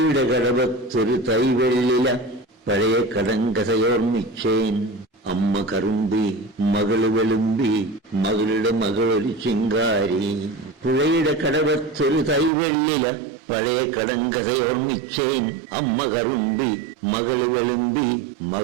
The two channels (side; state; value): left; drops out; at 12.5 s